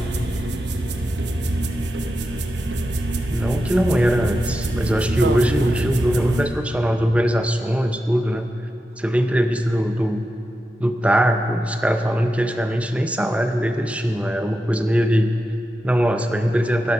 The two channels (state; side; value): normal; both; correlation 0.89